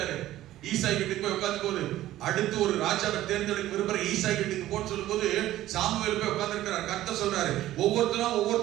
ஈசாய் வீட்டுக்கு போய் உட்கார்ந்து போது, அடுத்து ஒரு ராஜாவை தேர்ந்தெடுக்க விரும்புற ஈசாய் வீட்டுக்கு போன்னு சொல்லும் போது சாமுவேல் போய் உட்கார்ந்து இருக்கிறார். கர்த்தர் சொல்றாரு,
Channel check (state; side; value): quieter; left; 14.5 dB